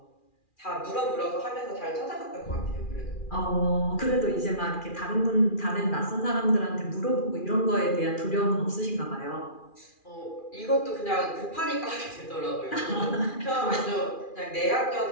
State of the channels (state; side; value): late; right; 2.4 ms